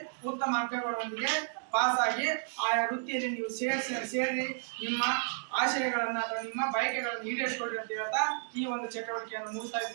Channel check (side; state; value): left; silent; digital silence